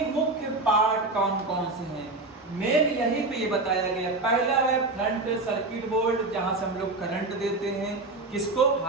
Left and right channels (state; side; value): quieter; left; 3.1 dB